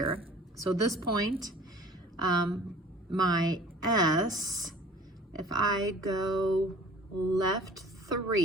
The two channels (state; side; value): normal; both; correlation 0.47